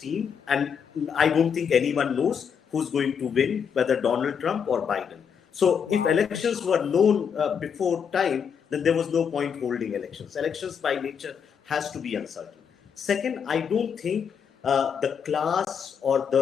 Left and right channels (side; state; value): right; quieter; 7.2 dB